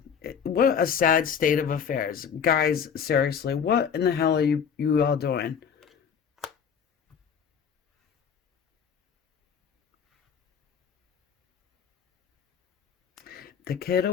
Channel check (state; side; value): quieter; right; 7.3 dB